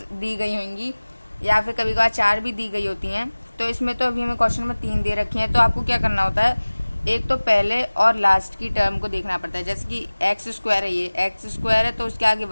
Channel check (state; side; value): inverted; both; correlation -1.00